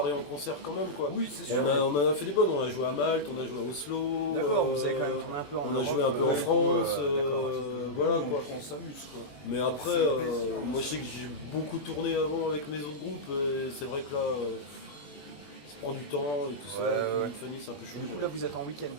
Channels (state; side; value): late; right; 21 ms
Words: en concert quand même quoi. Oui, c'est sûr. On en a fait des bonnes. On a joué à Malte, on a joué à Oslo. D'accord, vous avez quand même tourné un peu en On a Europe, joué un peu en ouais, France. d'accord, Voilà on, quoi. on s'amuse quoi. Mais après, C'est plaisir, moi je sais que j'ai beaucoup tourné avant avec mes autres groupes et c'est vrai que là, ça prend du temps et tout ça. Ouais, avec ouais. une vie de famille, c'est un peu chaud. Du coup, là, vous êtes en week-end.